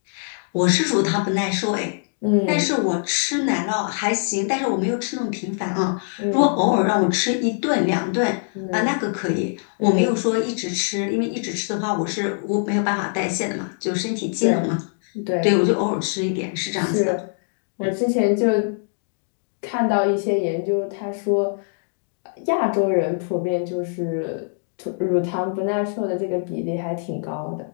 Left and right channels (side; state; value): right; silent; digital silence